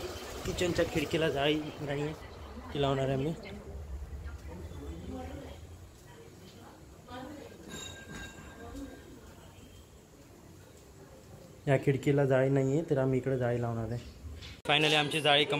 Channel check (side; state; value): both; identical; correlation 1.00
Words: किचनच्या खिडकीला जाळी नाही आहे, ती लावणार आहे मी. या खिडकीला जाळी नाही आहे, तर आम्ही इकडे जाळी लावणार आहे. फायनली आमची जाळी